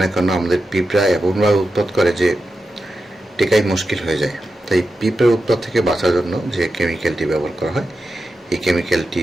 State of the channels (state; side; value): normal; both; correlation 0.90